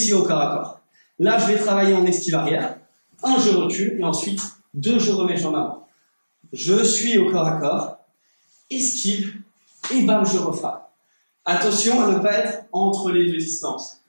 au corps à corps. Là, je vais travailler en esquive arrière. 1, je recule, et ensuite, 2, je remets jambe avant. Je suis au corps à corps, esquive, et bam, je refrappe. Attention à ne pas être entre les deux distances,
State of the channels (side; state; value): both; inverted; correlation -1.00